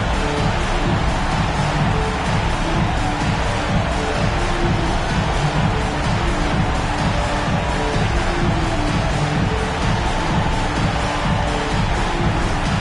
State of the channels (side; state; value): both; identical; correlation 1.00